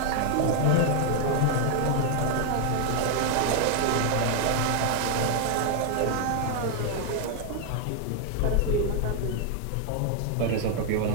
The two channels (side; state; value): both; different; correlation 0.00